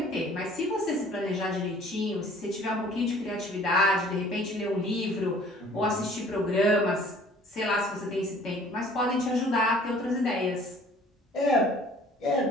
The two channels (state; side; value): normal; both; correlation 0.52